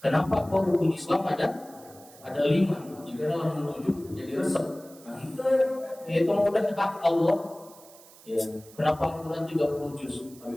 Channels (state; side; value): noise; right; hiss, 22 dB below the sound